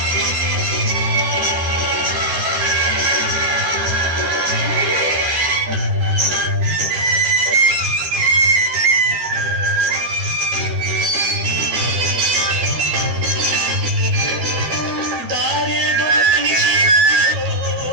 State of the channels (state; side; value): late; left; 13 ms